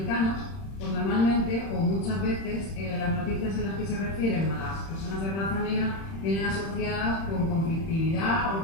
pues normalmente o muchas veces las noticias en las que se refieren a las personas de raza negra vienen asociadas con conflictividad o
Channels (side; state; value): right; late; 31 ms